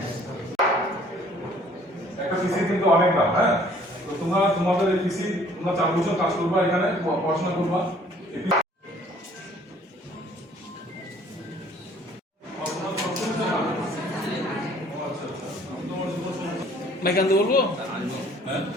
একটা পিসি কিন্তু অনেক দাম, হ্যাঁ? তো তোমরা তোমাদের এই পিসি তোমরা 4 বছর কাজ করবা, এখানে পড়াশোনা করবা। মাইক আনতে বলবো? হ্যাঁ,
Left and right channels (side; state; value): both; normal; correlation 0.57